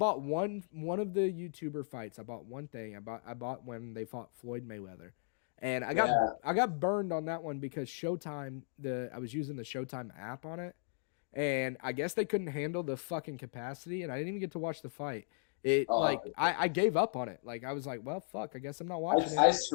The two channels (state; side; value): silent; right; digital silence